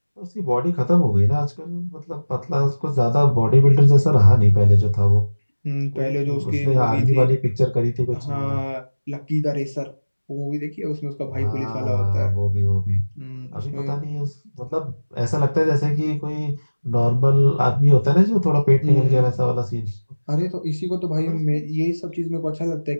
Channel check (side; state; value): both; inverted; correlation -1.00